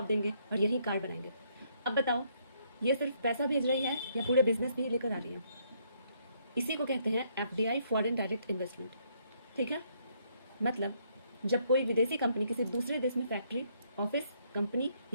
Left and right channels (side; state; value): both; inverted; correlation -0.70